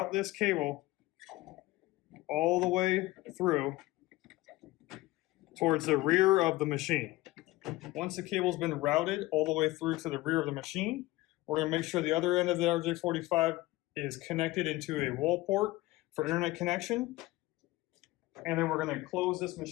this cable all the way through towards the rear of the machine. Once the cable's been routed all the way through to the rear of the machine, we're going to make sure the other end of the RJ45 is connected into a wall port for internet connection. And then we're going to close this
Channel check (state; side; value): quieter; right; 19.1 dB